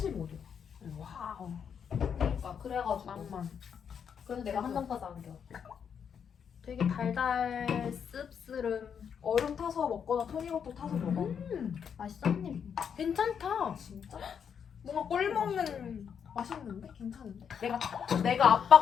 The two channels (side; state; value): right; quieter; 7.4 dB